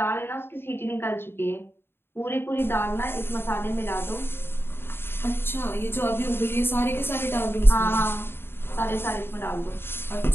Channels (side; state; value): right; late; 0.11 ms